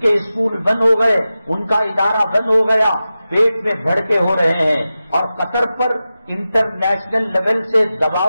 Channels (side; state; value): both; inverted; correlation -0.94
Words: کے اسکول بند ہو گئے، ان کا ادارہ بند ہو گیا، پیٹ میں بھڑکے ہو رہے ہیں اور قطر پر انٹرنیشنل لیول سے